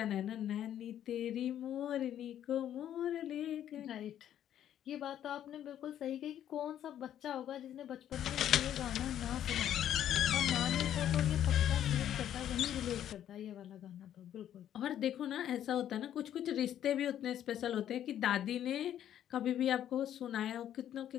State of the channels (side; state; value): right; quieter; 10.8 dB